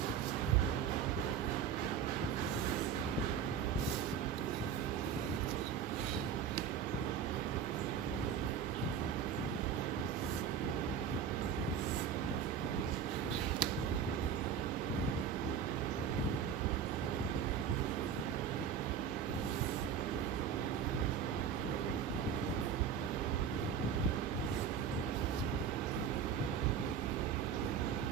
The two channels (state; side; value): quieter; left; 7.7 dB